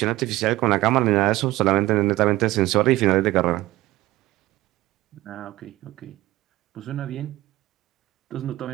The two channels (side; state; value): left; quieter; 17.4 dB